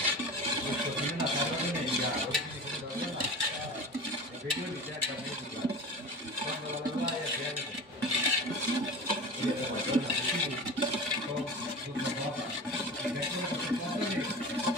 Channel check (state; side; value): normal; both; correlation 0.33